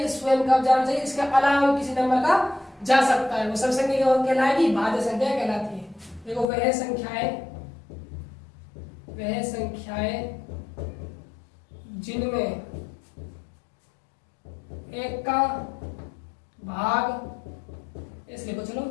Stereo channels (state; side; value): drops out; right; at 6.5 s